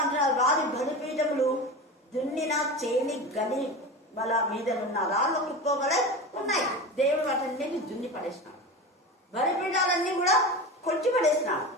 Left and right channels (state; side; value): normal; both; correlation 0.27